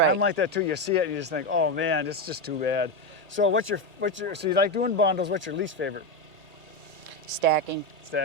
I'm like that too. You see it and you just think, oh man, it's just too bad. So so you like doing bundles, what's your least favorite? Stacking.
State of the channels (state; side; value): late; left; 1.8 ms